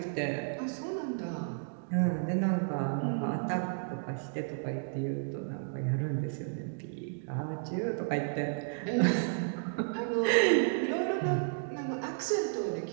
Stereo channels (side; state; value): left; silent; digital silence